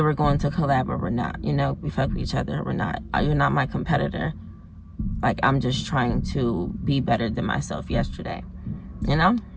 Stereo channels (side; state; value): both; identical; correlation 1.00